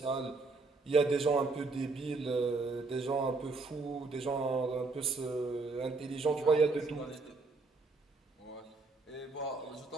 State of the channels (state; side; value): quieter; left; 3.8 dB